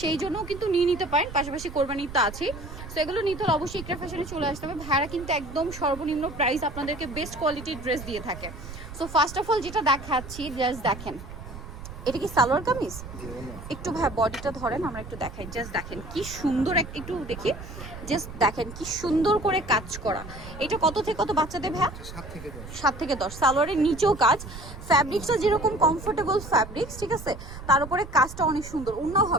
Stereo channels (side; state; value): right; noise; rumble, 12 dB below the sound